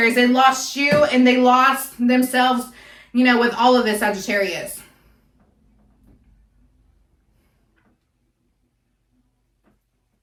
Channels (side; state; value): both; identical; correlation 1.00